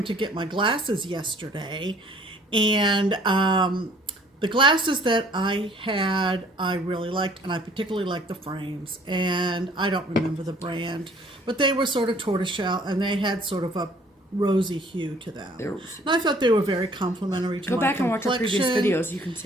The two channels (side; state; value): both; normal; correlation 0.57